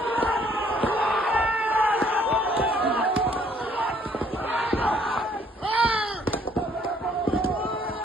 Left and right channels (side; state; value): both; normal; correlation 0.63